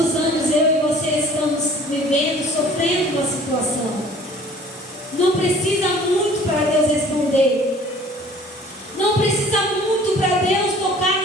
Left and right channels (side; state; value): both; normal; correlation 0.50